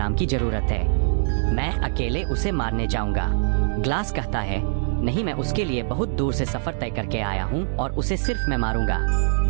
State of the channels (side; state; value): left; silent; digital silence